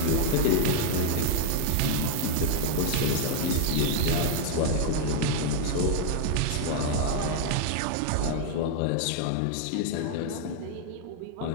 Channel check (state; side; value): different; both; correlation 0.00